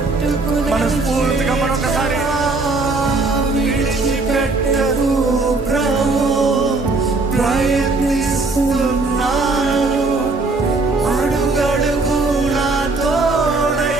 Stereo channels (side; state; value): left; quieter; 3.5 dB